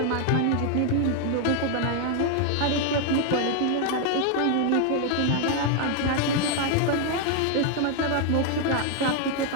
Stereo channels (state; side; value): different; both; correlation 0.01